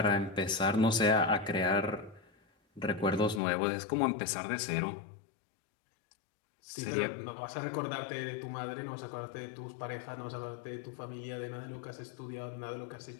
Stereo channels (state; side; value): drops out; right; at 3.4 s